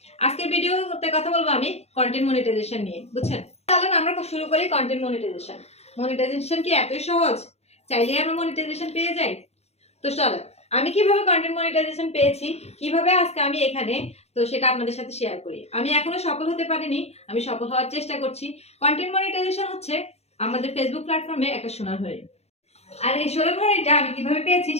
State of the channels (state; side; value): late; right; 0.31 ms